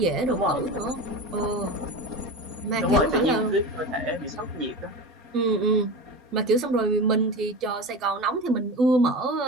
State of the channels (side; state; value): both; normal; correlation 0.28